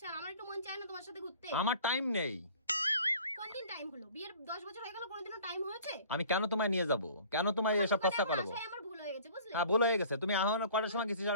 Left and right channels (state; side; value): inverted; both; correlation -0.49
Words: আমার একটু মন চায় না তোমার সাথে ঘুরতে আমার টাইম নেই কোন দিন টাইম হলো বিয়ের 10 বছর হয়ে গেল কোনদিনও টাইম হয়েছে আমি কেন তোমায় নিয়ে যাব কেন তোমায় এসব খরচা করবো আমার ভুল হয়ে গেছে বুঝলে হ্যাঁ ভুল হয়ে গেছে তুমি এখন কটার সময় গেছিস